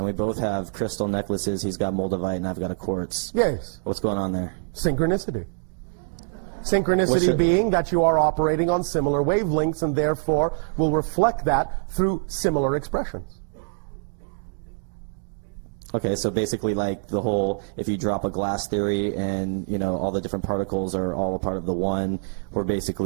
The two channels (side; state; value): left; silent; digital silence